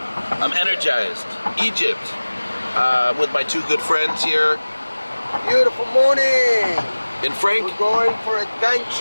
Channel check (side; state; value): both; inverted; correlation -1.00